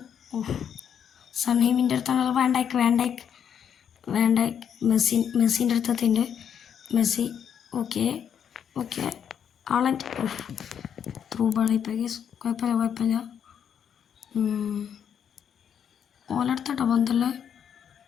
സൺഹീമിൻ്റെ അടുത്താണ്. വേണ്ടായിക്ക് മെസ്സിൻ്റെ അടുത്തെത്തിൻ്റെ മെസ്സി. ഓക്കെ ആളൻ്റെ ത്രൂ ബാളിപ്പോൾ കുഴപ്പമില്ല. ഓലെടുത്തോട്ടോ ബന്ധല്ലേ.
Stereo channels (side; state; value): right; quieter; 8.4 dB